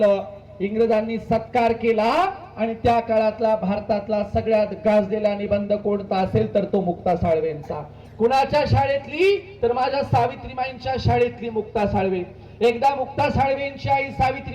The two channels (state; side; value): identical; both; correlation 1.00